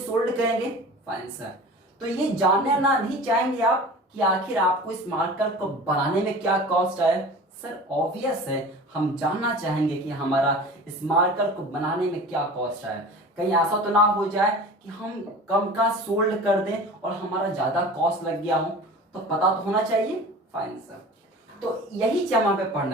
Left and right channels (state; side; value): normal; both; correlation 0.38